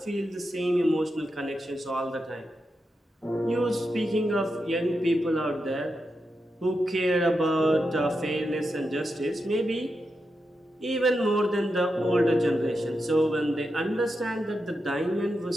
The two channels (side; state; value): both; normal; correlation 0.87